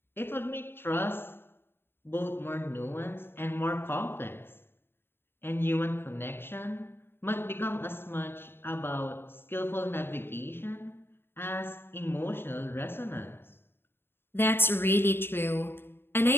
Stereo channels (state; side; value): late; right; 0.11 ms